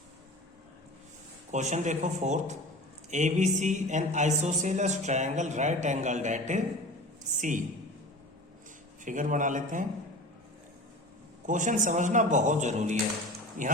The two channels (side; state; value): both; normal; correlation 0.36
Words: Question देखो fourth, ABC an isosceles triangle right angled at C। Figure बना लेते हैं। Question समझना बहुत जरूरी है।